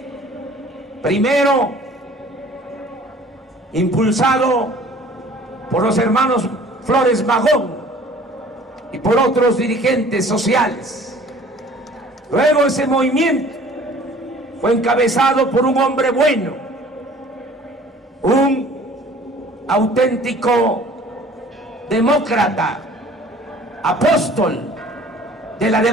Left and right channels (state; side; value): normal; both; correlation 0.50